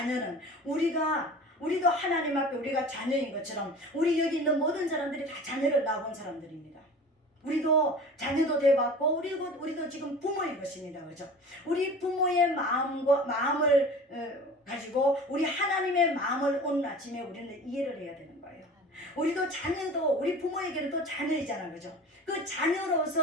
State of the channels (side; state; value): both; normal; correlation 0.39